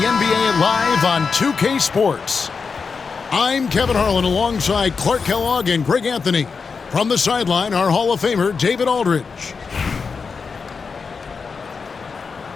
Live on 2K Sports. I'm Kevin Harlan alongside Clark Kellogg and Greg Anthony. From the sideline, our Hall of Famer, David Aldridge.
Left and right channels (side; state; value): right; quieter; 5.2 dB